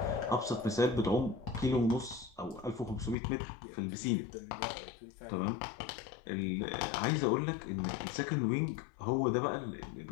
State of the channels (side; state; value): right; drops out; at 3.2 s